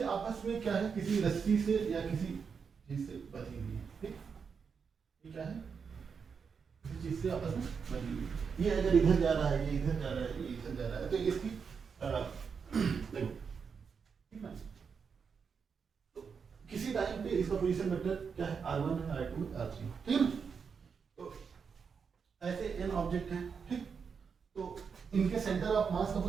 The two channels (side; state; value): left; quieter; 6.0 dB